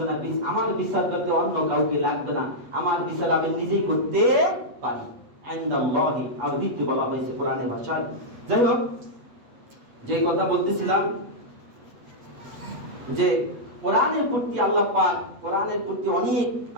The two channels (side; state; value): left; late; 8.4 ms